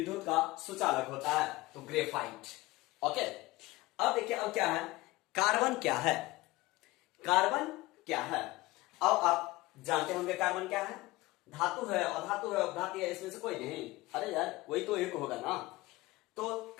का सुचालक होता है, तो ग्रेफाइट। ओके, अब देखिए अब क्या है, कार्बन क्या है, कार्बन क्या है। अब आप जानते होंगे कार्बन क्या है, धातु है, अधातु है, अपधातु है, इसमें से कोई नहीं, अरे यार कोई तो एक होगा ना, तो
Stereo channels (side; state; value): right; quieter; 20.1 dB